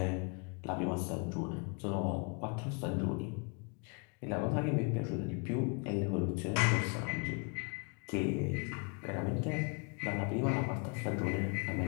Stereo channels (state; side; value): quieter; right; 34.2 dB